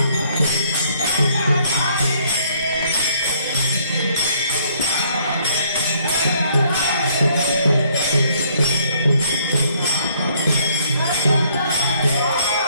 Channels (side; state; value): both; inverted; correlation -0.65